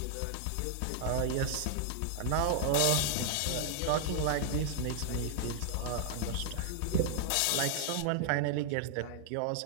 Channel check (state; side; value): different; both; correlation -0.01